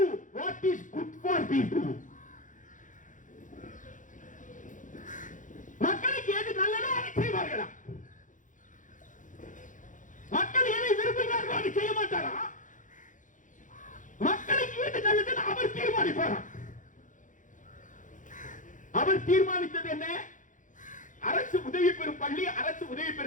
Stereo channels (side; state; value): right; late; 0.37 ms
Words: what is good for people. மக்களுக்கு எது நல்லதோ அதை செய்வார்களா? மக்கள் எதை விரும்புகிறார்களோ அதை செய்ய மாட்டாரா? மக்களுக்கு எது நல்லதுன்னு அவர் தீர்மானிப்பாரா? அவர் தீர்மானித்தது என்ன? அரசு உதவி பெறும் பள்ளி, அரசு உதவி